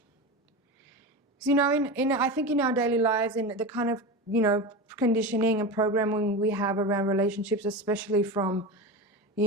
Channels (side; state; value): both; normal; correlation 0.24